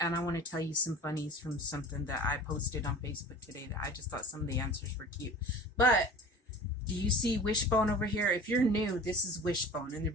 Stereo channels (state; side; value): normal; both; correlation 0.40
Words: I want to tell you some funnies from something that I posted on Facebook today that I just thought some of the answers were cute. But do you see Wishbone over here? If you're new, this is Wishbone. And the